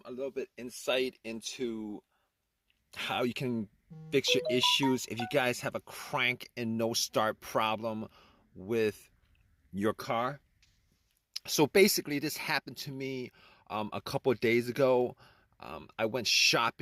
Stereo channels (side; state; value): both; identical; correlation 1.00